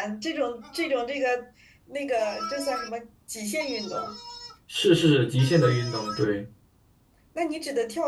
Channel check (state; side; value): identical; both; correlation 1.00